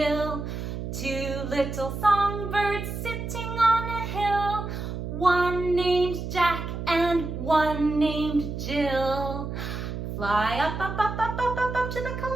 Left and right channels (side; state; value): right; noise; hum, 5 dB below the sound